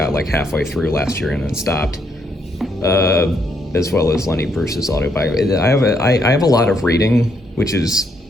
like halfway through last year and then stopped, as well as Lenny Bruce's autobiography. I have a lot of reading, which is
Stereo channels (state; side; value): normal; both; correlation 0.74